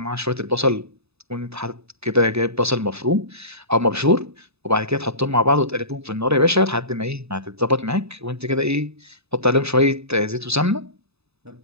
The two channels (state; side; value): late; left; 0.79 ms